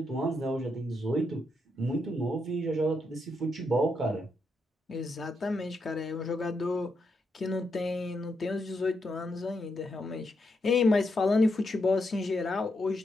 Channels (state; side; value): normal; both; correlation 0.81